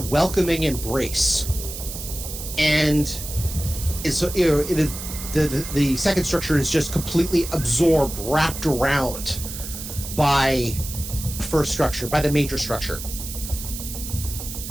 embrace. And it's the second structure is just completely absorbed, wrapped around by the first structure, by the major structure.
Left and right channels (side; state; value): right; noise; hiss, 9 dB below the sound